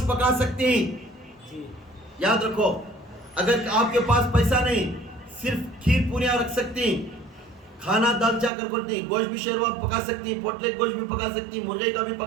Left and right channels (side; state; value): left; drops out; at 8.5 s